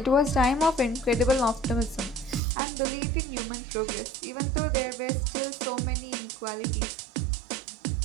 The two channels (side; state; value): left; drops out; at 2.4 s